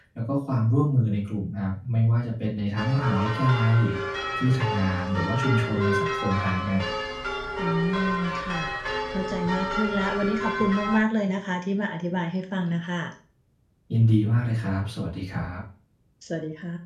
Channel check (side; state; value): both; identical; correlation 1.00